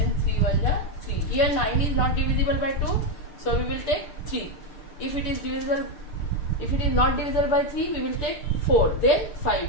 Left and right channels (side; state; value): right; late; 6.7 ms